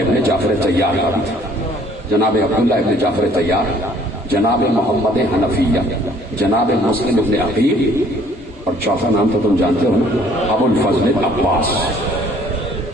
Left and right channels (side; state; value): both; normal; correlation 0.58